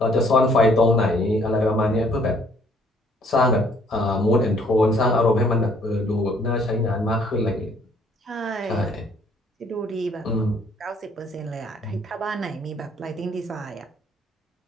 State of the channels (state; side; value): normal; both; correlation 0.62